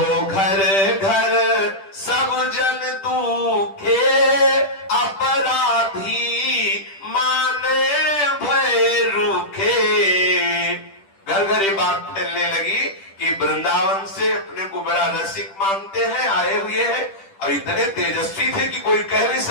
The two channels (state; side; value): late; right; 10 ms